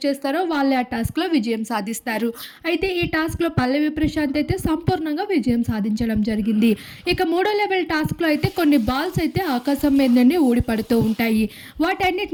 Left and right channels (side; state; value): both; identical; correlation 1.00